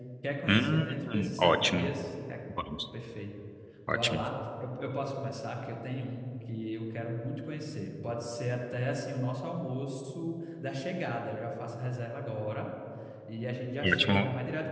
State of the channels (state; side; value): identical; both; correlation 1.00